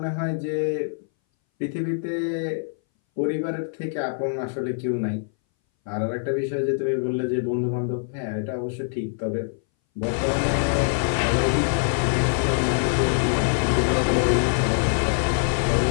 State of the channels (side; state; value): right; silent; 60 dB below the other